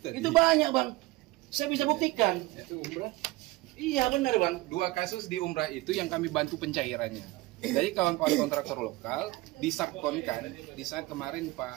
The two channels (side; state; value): left; quieter; 20.4 dB